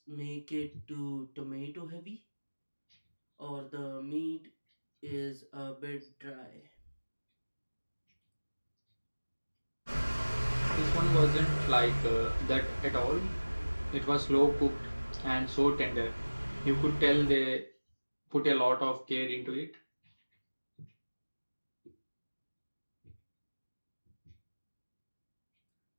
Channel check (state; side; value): inverted; both; correlation -1.00